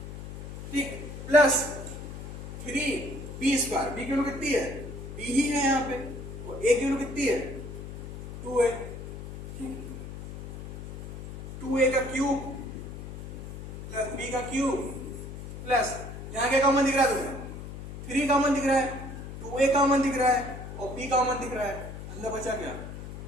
ठीक, प्लस 3b², b की वैल्यू कितनी है? b ही है यहाँ पे, और a की वैल्यू कितनी है? 2a। 2a का क्यूब प्लस b का क्यूब प्लस, यहाँ क्या कॉमन दिख रहा है तुम्हें? 3 कॉमन दिख रहा है, 2a कॉमन दिख रहा है और b कॉमन दिख रहा है। अंदर बचा क्या?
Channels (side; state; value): left; noise; hum, 10 dB below the sound